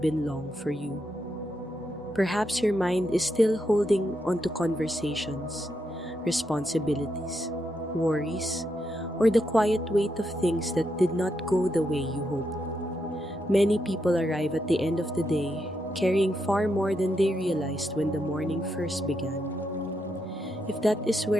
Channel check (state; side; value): normal; both; correlation 0.82